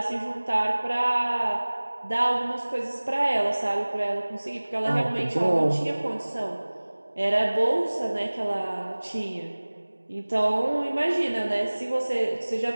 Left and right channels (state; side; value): inverted; both; correlation -1.00